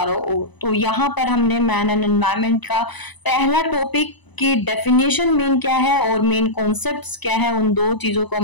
ओर। तो यहाँ पर हमने मैन एंड एनवायरनमेंट का पहला टॉपिक की डेफिनेशन मेन क्या है और मेन कॉन्सेप्ट्स क्या है, उन दो चीजों को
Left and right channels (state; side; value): late; right; 1.0 ms